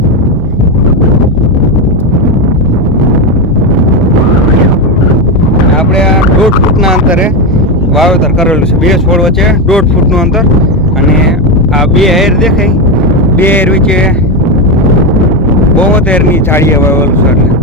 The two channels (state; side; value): normal; both; correlation 0.11